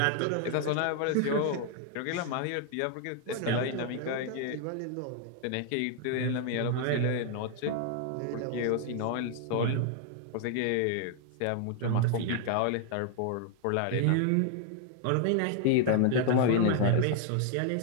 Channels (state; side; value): different; both; correlation 0.00